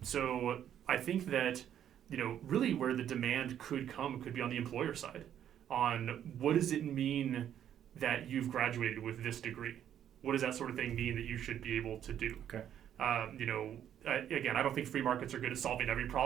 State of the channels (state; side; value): quieter; left; 10.1 dB